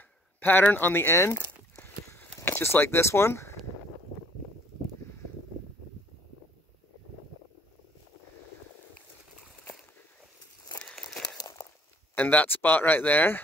pattern on the end, just like this one. And that spot right there.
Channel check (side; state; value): both; normal; correlation 0.59